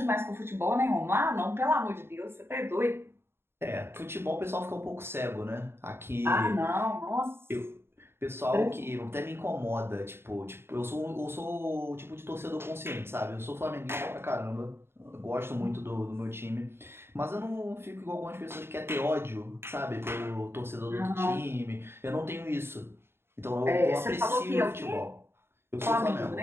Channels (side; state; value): left; late; 0.11 ms